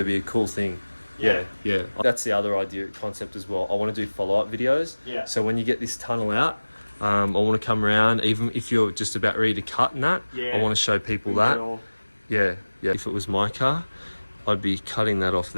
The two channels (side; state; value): both; inverted; correlation -1.00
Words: be a cool thing. Yeah. That's the other idea concept as well. I want to do follow-up videos. Yeah. So when you get this tunnel out, I want to come around, even if you're just about ready to cut and that. Yeah. I want to show people that. Yeah. If it was my car, I'd be cutting that off